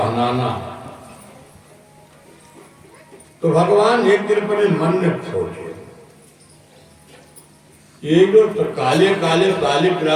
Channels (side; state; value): both; identical; correlation 1.00